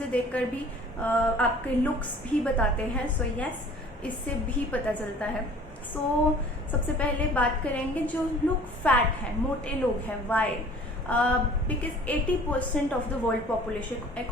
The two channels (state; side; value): normal; both; correlation 0.49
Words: देखकर भी आपके लुक्स भी बताते हैं. येस, इससे भी पता चलता है. सबसे पहले बात करेंगे जो लोग फैट हैं, मोटे लोग हैं. Why? Because 80% of the world population,